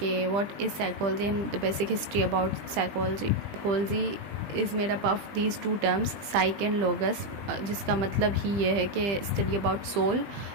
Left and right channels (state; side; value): late; left; 20 ms